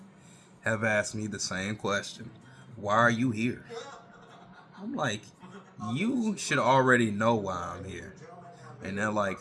have asked me the same question. Why are you here? I'm like, you should already know why I'm here. And they're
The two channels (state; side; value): identical; both; correlation 1.00